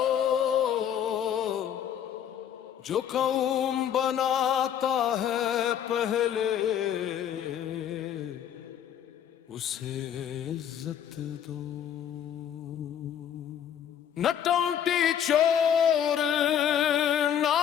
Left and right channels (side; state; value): right; quieter; 9.4 dB